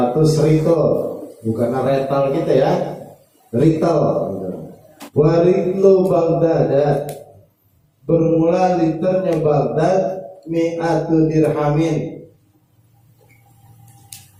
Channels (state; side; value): identical; both; correlation 1.00